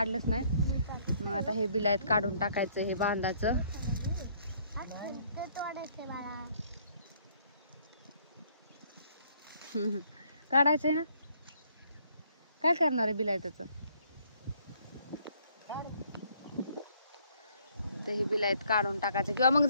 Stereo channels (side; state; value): both; inverted; correlation -0.65